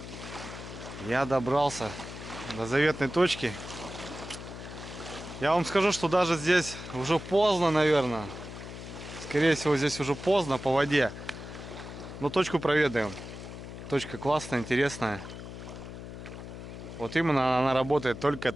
Я добрался до заветной точки. Я вам скажу, что даже здесь уже поздно, наверное. Скорее всего, здесь уже поздно по воде. Но точку проведаем. Точка классная, интересная. Вот именно она работает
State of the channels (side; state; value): left; noise; hum, 11 dB below the sound